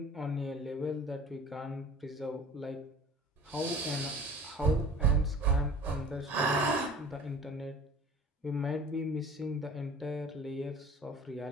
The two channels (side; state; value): both; normal; correlation 0.44